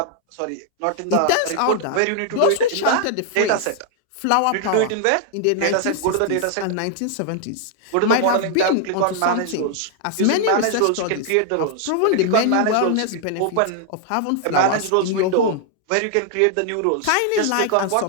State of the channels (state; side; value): different; both; correlation 0.00